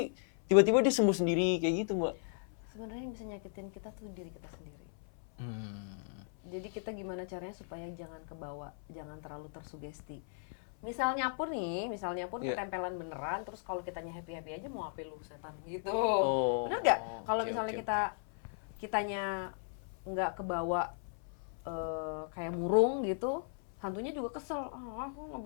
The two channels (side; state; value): right; silent; 54 dB below the other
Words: tiba-tiba dia sembuh sendiri kayak gitu Mbak. Sebenarnya yang bisa nyakitin kita tuh diri kita sendiri. Jadi kita gimana caranya supaya jangan kebawa, jangan terlalu tersugesti. Misalnya pun Iya. ketempelan beneran, terus kalau kitanya happy aja mau apa lu setan gitu. Oh, Bener nggak? Kalau oke, misalnya oke. kitanya nggak kebawa kayak murung gitu, hantunya juga kesel. Aku nggak